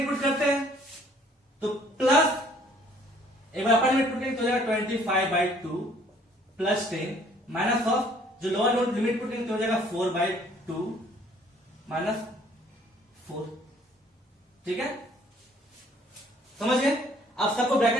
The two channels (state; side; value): normal; both; correlation 0.59